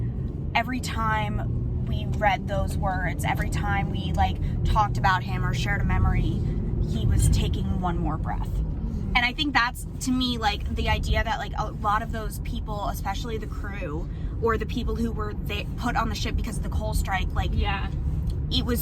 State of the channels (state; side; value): identical; both; correlation 1.00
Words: every time we read those words, every time we, like, talked about him or shared a memory, he was taking one more breath. And I think that's, to me, like, the idea that, like, a lot of those people, especially the crew or the people who were put on the ship because of the coal strike, like, it was